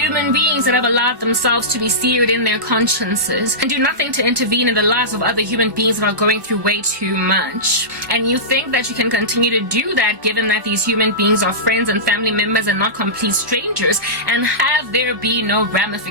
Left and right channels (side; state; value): left; late; 1.1 ms